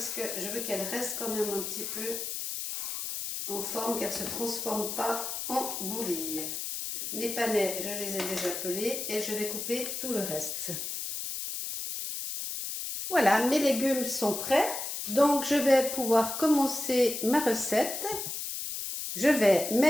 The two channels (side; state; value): left; noise; hiss, 5 dB below the sound